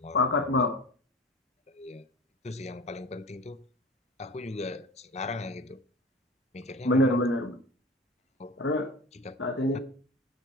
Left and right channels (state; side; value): normal; both; correlation 0.35